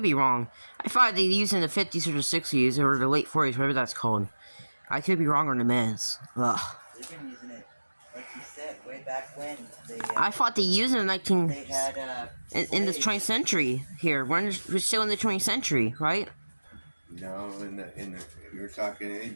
be wrong. I thought they used it in the 50s or the 60s or the late 40s, whatever that's called. I could be wrong on the men's. Ugh. They've been using it, like you said, way back when. I thought they used it in They had in the 20th century here. We're still in the 20th century, right? No, you're talking. They've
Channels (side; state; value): both; inverted; correlation -1.00